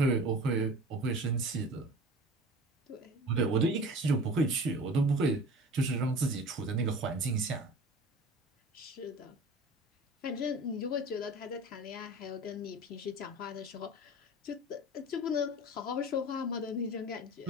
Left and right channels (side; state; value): both; normal; correlation 0.38